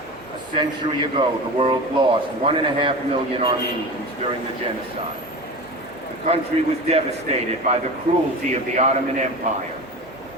A century ago, the world lost 1.5 million Armenians during the genocide. The country was devastated by the cruelty of the Ottoman Empire.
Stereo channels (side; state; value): both; normal; correlation 0.30